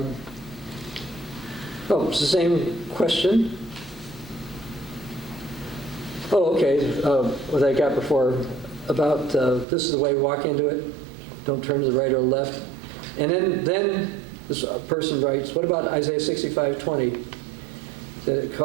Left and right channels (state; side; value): drops out; left; at 9.7 s